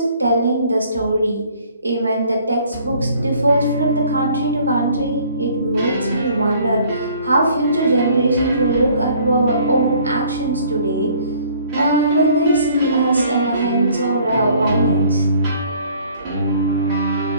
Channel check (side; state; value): both; inverted; correlation -0.57